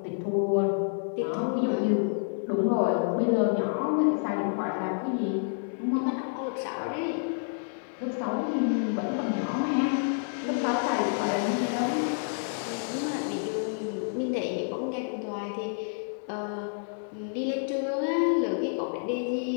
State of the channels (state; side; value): silent; right; digital silence